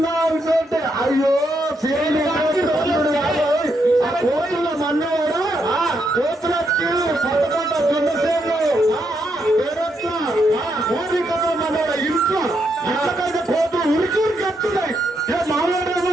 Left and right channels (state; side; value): normal; both; correlation 0.79